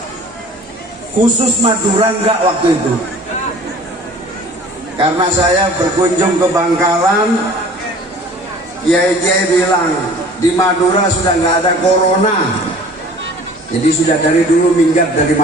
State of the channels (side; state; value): both; normal; correlation 0.47